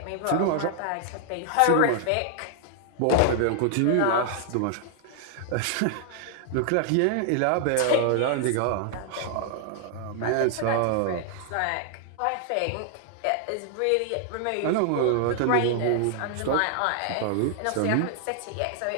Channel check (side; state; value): both; different; correlation 0.00